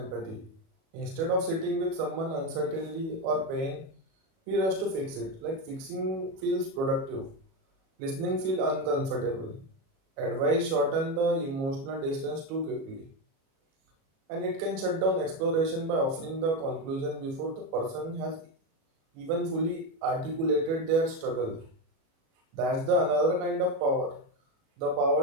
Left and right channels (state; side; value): late; left; 37 ms